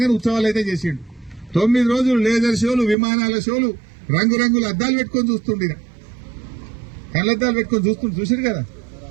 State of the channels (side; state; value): left; drops out; at 3.0 s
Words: ఉత్సవాలు అయితే చేసిండు. 9 రోజులు లేజర్ షోలు, విమానాల షోలు, రంగురంగుల అద్దాలు పెట్టుకొని చూస్తుండే, కళ్ళద్దాలు పెట్టుకొని చూసారు కదా,